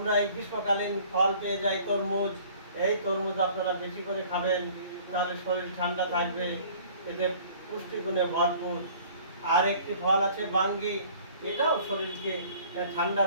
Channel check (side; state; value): both; inverted; correlation -0.52